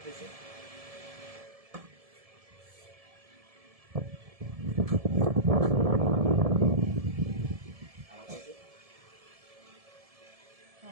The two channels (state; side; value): late; left; 1.7 ms